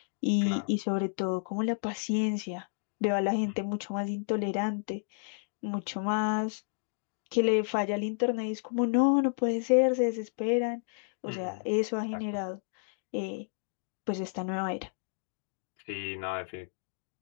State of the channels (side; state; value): right; silent; digital silence